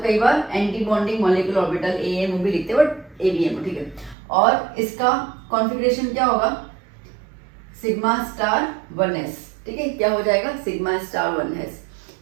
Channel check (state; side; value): drops out; left; at 4.2 s